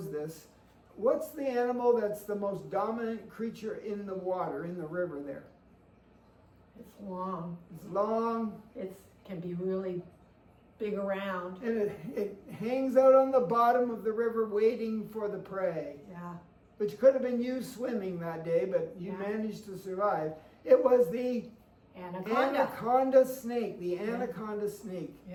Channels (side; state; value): both; identical; correlation 1.00